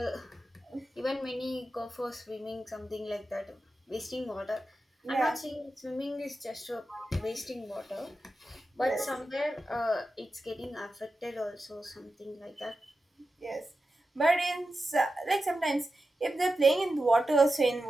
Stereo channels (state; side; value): normal; both; correlation 0.91